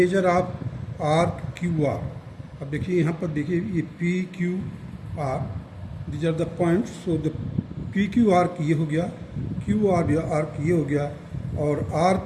of arc QR. अब देखिए यहाँ पर देखिए ये PQR, these are the points. So the PQ arc ये हो गया, QR arc ये हो गया और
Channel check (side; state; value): both; identical; correlation 1.00